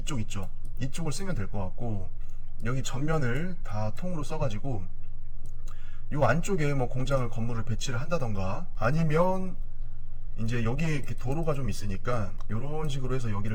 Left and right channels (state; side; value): identical; both; correlation 1.00